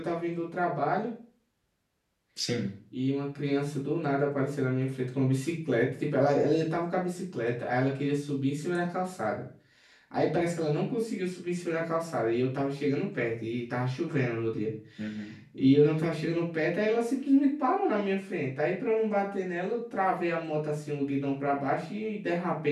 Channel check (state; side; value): identical; both; correlation 1.00